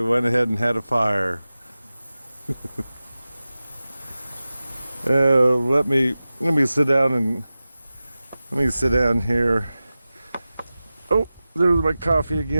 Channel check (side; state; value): both; inverted; correlation -0.95